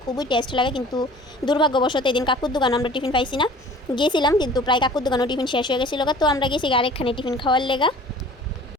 খুবই টেস্ট লাগে, কিন্তু দুর্ভাগ্যবশত এদিন কাকুর দোকানে আমরা টিফিন পাইছি না। গিয়েছিলাম কিন্তু প্রায় কাকুর দোকানেও টিফিন শেষ হয়ে গেছিলো। তো আমরা গেছি আরেকখানে টিফিন খাওয়ার লেগা।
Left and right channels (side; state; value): both; normal; correlation 0.46